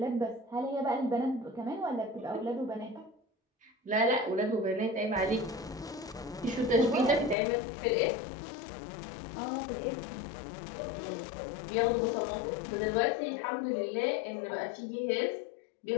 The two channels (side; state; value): right; drops out; at 7.4 s